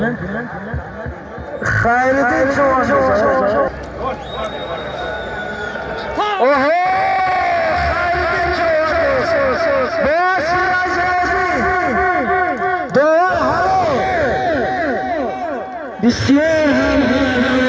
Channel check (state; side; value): identical; both; correlation 1.00